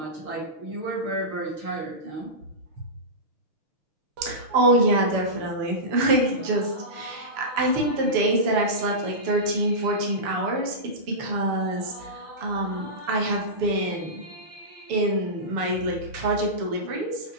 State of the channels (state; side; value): late; left; 6.9 ms